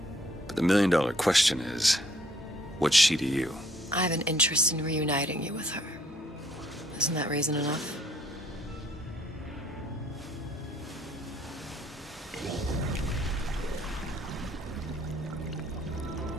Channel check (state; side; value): normal; both; correlation 0.64